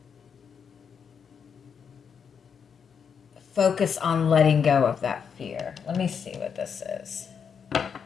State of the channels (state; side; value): quieter; right; 6.8 dB